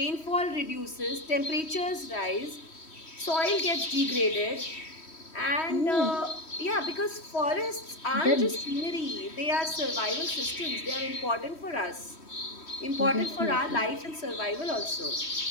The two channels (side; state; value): right; late; 3.1 ms